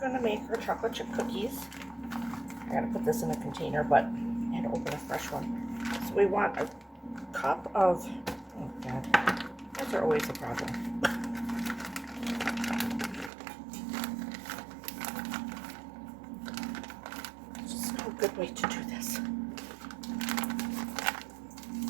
make our chocolate chip cookies. I gotta put this in a container, but I had to open a fresh one. So we want a cup of, oh God, those are always a problem. Just no good way to do this.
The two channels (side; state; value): left; drops out; at 13.3 s